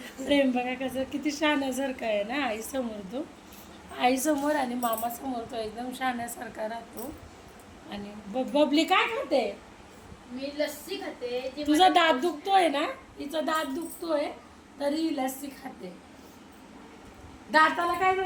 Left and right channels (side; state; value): both; identical; correlation 1.00